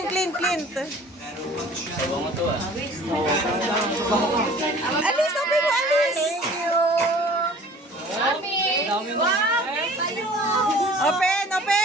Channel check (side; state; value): both; normal; correlation 0.48